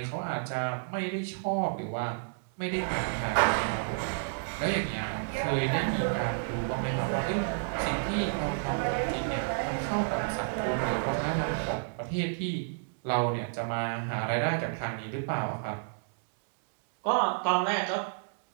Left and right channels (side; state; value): left; silent; digital silence